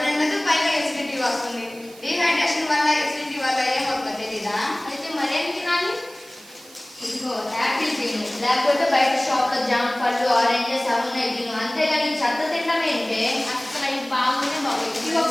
నిండదు, పైగా ఎసిడిటీ వస్తుంది. డీహైడ్రేషన్ వల్ల ఎసిడిటీ వల్ల ఏమవుతుంది తెలీదా? అయితే మరేం తినాలి? ఇదిగో యాపిల్ తిను, లేకపోతే బయట షాప్లో జామ పళ్ళు, ఆరెంజెస్ అవున్నాయి తిను. అంతేగాని చెత్త తినడం ఏంటే? అసలు అవి బాగుంటే బాగుంది. ఇవి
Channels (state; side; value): noise; right; hiss, 22 dB below the sound